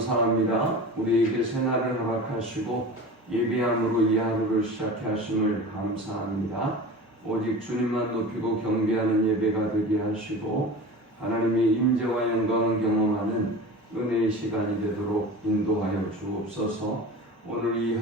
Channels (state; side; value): normal; both; correlation 0.34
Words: 우리에게 새날을 허락하시고 예배함으로 이 하루를 시작해 하심을 감사합니다. 오직 주님만 높이고 경배하는 예배가 되게 하시고 하나님의 임재와 영광을 경험하는 은혜의 시간이 되도록 인도하여 주옵소서. 오늘 이